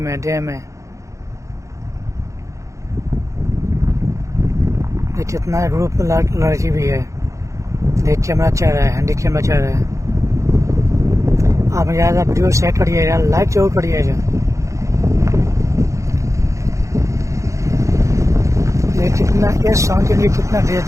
डे में। ये कितना ग्रुप में लड़की भी है। ये कैमरा चल रहा है, हैंडी कैमरा चल रहा है। आप ज़्यादा वीडियो शेयर करिएगा, लाइक जरूर करिएगा। ये कितना इस सॉन्ग के लिए कितना ड्रेस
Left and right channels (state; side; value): late; left; 0.15 ms